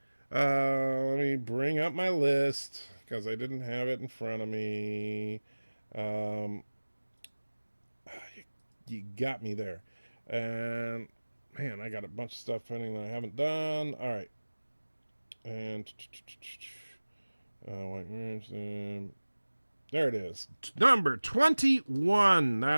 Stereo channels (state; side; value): inverted; both; correlation -1.00